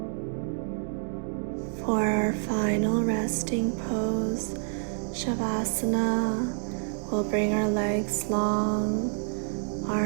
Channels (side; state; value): left; silent; 59 dB below the other